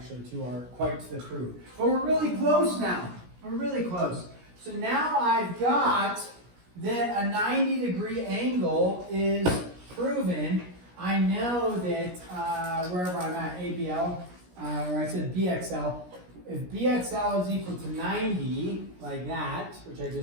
quite to the proof. But we're really close now. We're really close. So now I've got that a 90-degree angle is proven. I know that wherever I'm at, ABL, or I said BXL, if BXL is equal to 90, like that, which I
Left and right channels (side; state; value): left; late; 17 ms